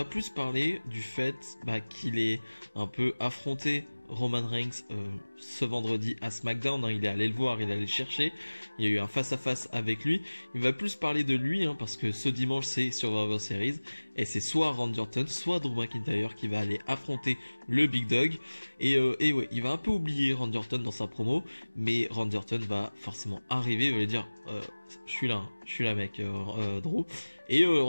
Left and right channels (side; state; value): both; inverted; correlation -1.00